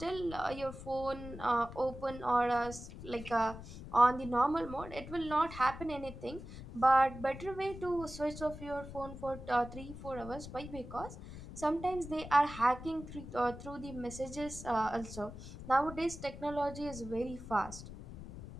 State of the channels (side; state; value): left; noise; rumble, 12 dB below the sound